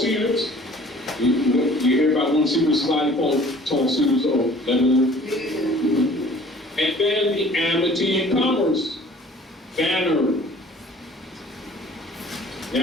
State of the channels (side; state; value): both; normal; correlation 0.51